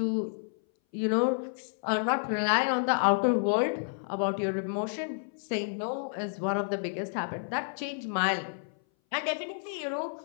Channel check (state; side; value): silent; right; 58 dB below the other